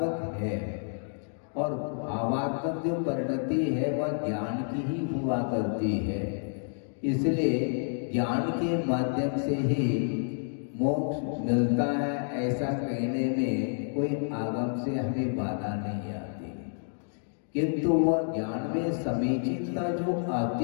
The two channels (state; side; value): silent; right; digital silence